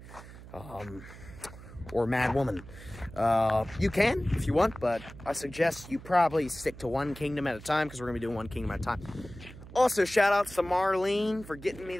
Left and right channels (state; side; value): noise; right; hum, 16 dB below the sound